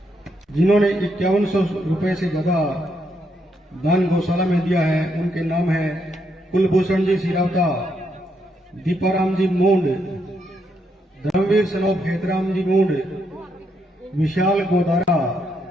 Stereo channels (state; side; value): normal; both; correlation 0.77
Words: जिन्होंने 5100 रुपए से ज्यादा दान गौशाला में दिया है, उनके नाम है कुलभूषण जी सिरावता, दीपाराम जी मूंड, धर्मवीर सनोप हेतराम जी मूंड, विशाल गोदारा